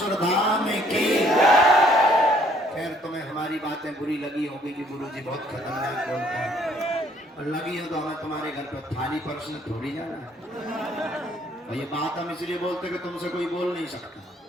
धाम की। खैर तुम्हें हमारी बातें बुरी लगी होगी कि गुरुजी बहुत खतरनाक बोलते हैं, और लगी हो तो हमें तुम्हारे घर पर थाली परसने थोड़ी जाना है। और ये बात हम इसलिए बोलते कि तुमसे कोई बोल नहीं सकता,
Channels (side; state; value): both; normal; correlation 0.62